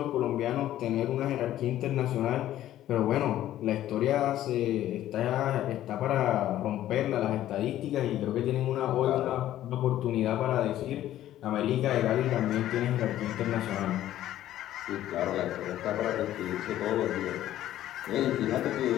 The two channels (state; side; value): quieter; right; 13.0 dB